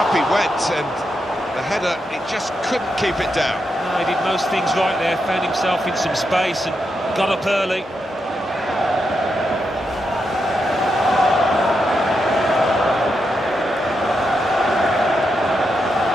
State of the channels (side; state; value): both; normal; correlation 0.84